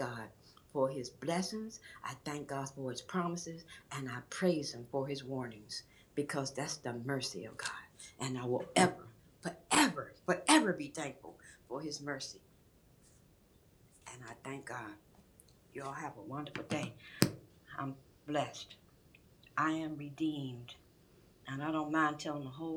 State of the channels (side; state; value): both; identical; correlation 1.00